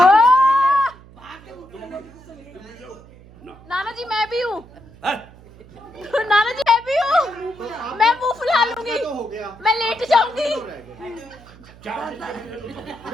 नाना जी मैं भी हूँ, नाना जी मैं भी हूँ, मैं मुंह फुला लूंगी, मैं लेट जाऊंगी।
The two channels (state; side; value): noise; right; hum, 22 dB below the sound